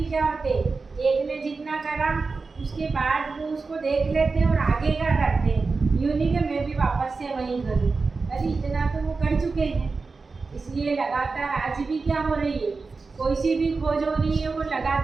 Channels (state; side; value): quieter; left; 4.2 dB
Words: क्या होते, एक ने जितना करा उसके बाद वो उसको देख लेते हैं और आगे क्या करते हैं। यूँ नहीं कि मैं भी वापस से वहीं करूँ, अरे इतना तो वो कर चुके हैं। इसलिए लगातार आज भी क्या हो रही है, कोई सी भी खोज हो रही है वो